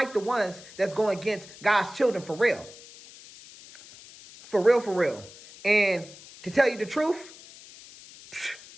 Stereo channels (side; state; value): left; noise; hiss, 19 dB below the sound